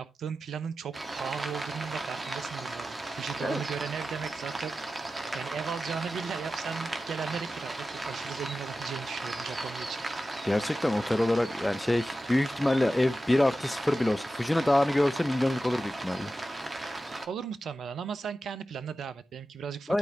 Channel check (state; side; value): normal; both; correlation 0.93